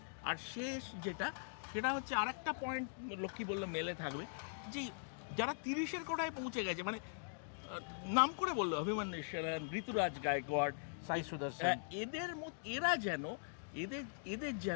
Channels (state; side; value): silent; right; digital silence